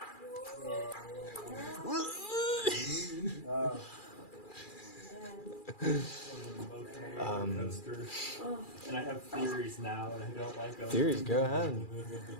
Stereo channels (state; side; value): late; right; 2.4 ms